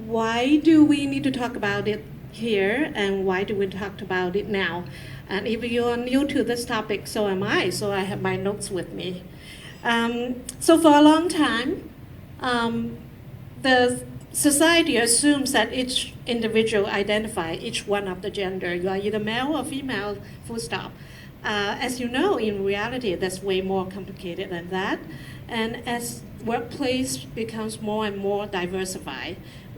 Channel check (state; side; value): identical; both; correlation 1.00